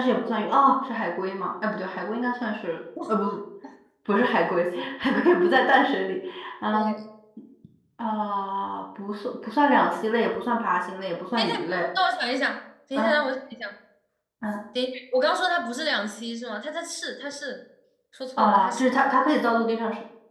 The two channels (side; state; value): both; identical; correlation 1.00